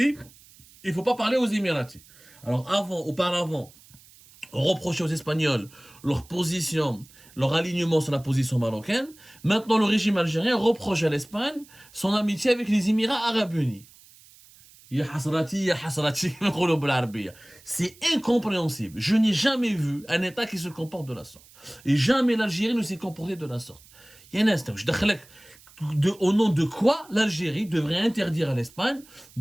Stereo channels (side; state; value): right; noise; hiss, 25 dB below the sound